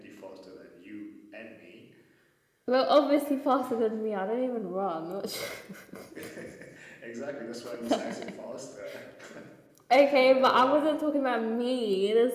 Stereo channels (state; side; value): identical; both; correlation 1.00